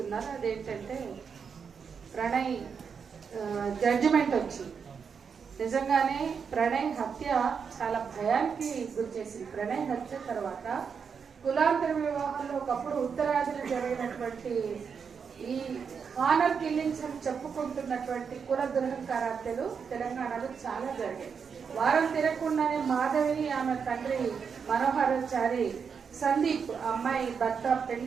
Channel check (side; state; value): left; quieter; 6.3 dB